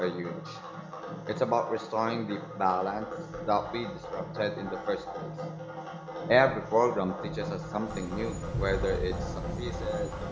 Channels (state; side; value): identical; both; correlation 1.00